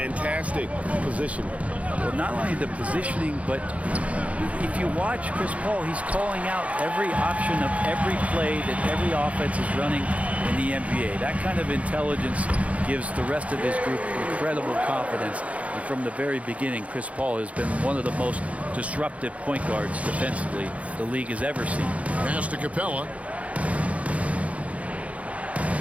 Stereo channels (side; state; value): left; late; 0.065 ms